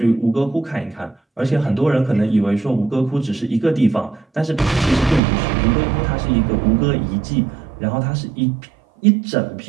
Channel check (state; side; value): drops out; left; at 5.2 s